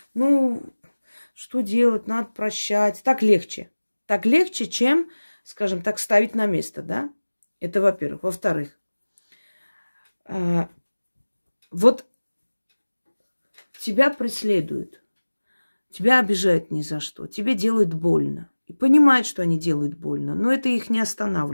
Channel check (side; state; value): both; inverted; correlation -1.00